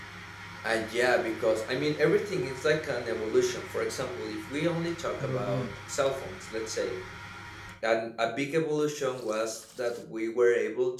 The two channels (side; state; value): both; identical; correlation 1.00